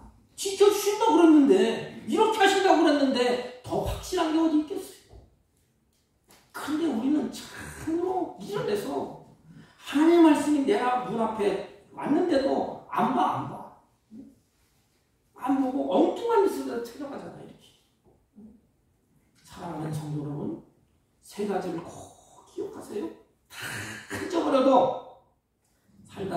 지켜주신다고 그랬는데, 이렇게 하신다고 그랬는데 더 확실한 게 어디 있겠어요? 그런데 우리는 참으로 미련해서 하나님의 말씀이 내가 문 앞에 왔는데도 안 봐. 안 보고 엉뚱한 짓을 찾아가잖아. 이렇게. 사랑하는 성도 여러분, 세 가지를 꼭 기억하세요. 다 잊어버려도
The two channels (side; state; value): both; identical; correlation 1.00